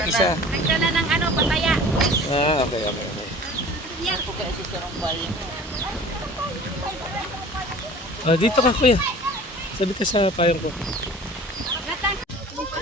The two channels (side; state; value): both; normal; correlation 0.44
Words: isa. Nagdala ng pataya. Okay, okay, okay. Dito ka, kuya. Sabi ka sa payong ko.